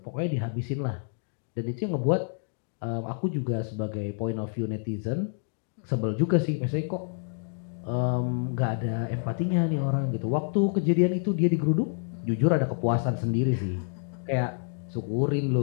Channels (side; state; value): right; silent; digital silence